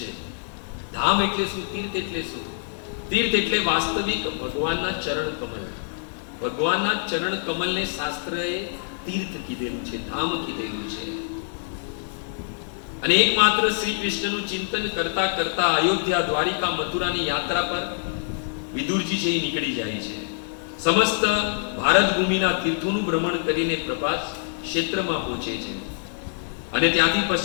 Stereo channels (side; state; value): right; silent; digital silence